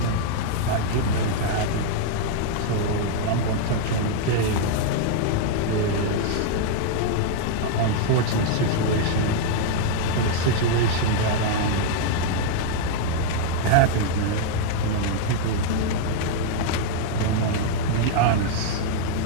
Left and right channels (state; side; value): different; both; correlation 0.00